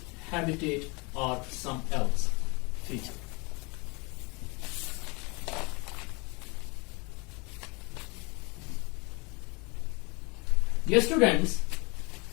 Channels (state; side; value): quieter; right; 28.8 dB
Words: or some else feature. Dear students,